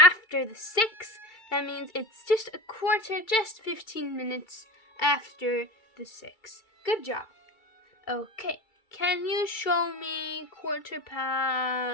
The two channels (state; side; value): late; right; 2.3 ms